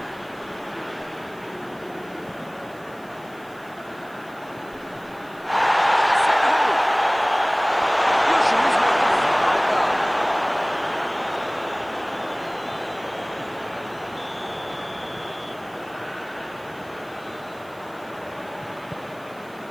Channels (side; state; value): right; noise; hiss, 27 dB below the sound